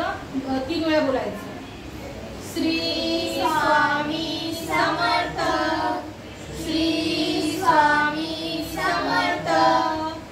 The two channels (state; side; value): identical; both; correlation 1.00